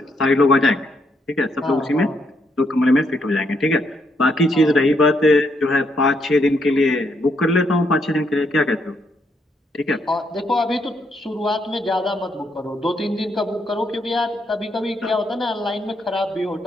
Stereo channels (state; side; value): normal; both; correlation 0.76